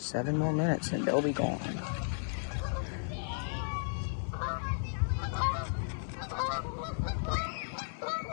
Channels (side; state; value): right; silent; 55 dB below the other